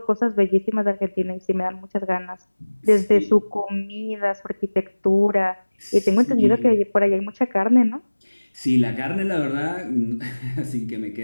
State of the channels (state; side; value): inverted; both; correlation -1.00